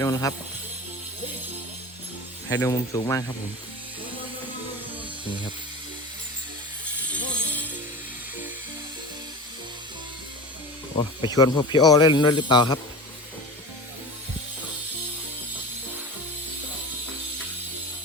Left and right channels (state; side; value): normal; both; correlation 0.33